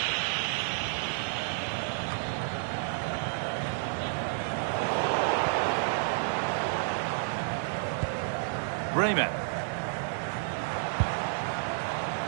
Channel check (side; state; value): left; silent; digital silence